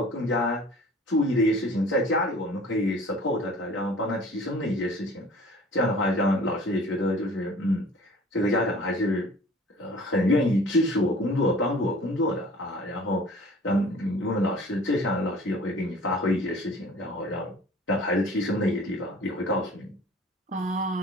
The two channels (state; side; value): normal; both; correlation 0.47